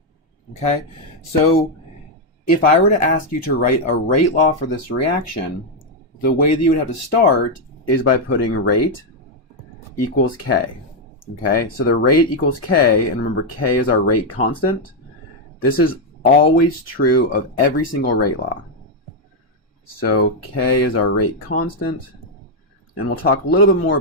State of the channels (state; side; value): normal; both; correlation 0.01